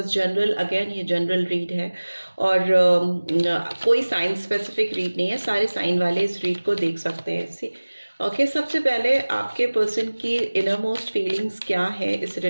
जनरल, अगेन ये जनरल रीड है और कोई साइन स्पेसिफिक रीड नहीं है। सारे साइन वाले इस रीड को देख सकते हैं। ओके, सबसे पहले आपके पर्सन की इनर मोस्ट फीलिंग्स क्या है इस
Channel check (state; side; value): inverted; both; correlation -1.00